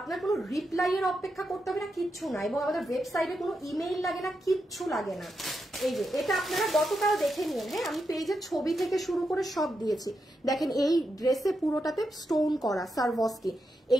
কোনো রিপ্লাই এর অপেক্ষা করতে হবে না, কিচ্ছু না। এবং আমাদের ওয়েবসাইটে কোনো ইমেইল লাগে না, কিচ্ছু লাগে না। এই যে এটা আপনারা গতকাল দেখে নিন। হ্যাঁ, আমি পেজের ছবি থেকে শুরু করে সব দিয়েছি। দেখেন এই ড্রেসে পুরোটাতে স্টোন করা সারভস্কি,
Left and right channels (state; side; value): normal; both; correlation 0.85